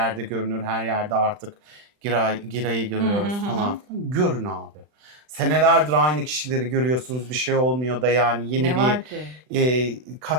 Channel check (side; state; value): left; late; 39 ms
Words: görünür, her yerde artık Giray'ı görüyoruz falan filan. Görün abi. Senelerdir aynı kişileri görüyorsunuz, bir şey olmuyor da yani yeni Ne bir var ki?